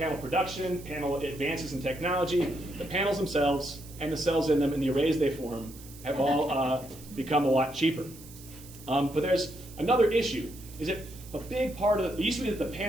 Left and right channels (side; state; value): right; noise; hiss, 19 dB below the sound